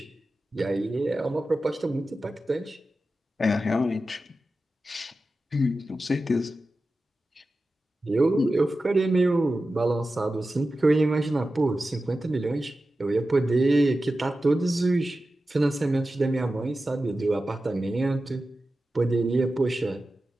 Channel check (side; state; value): both; normal; correlation 0.93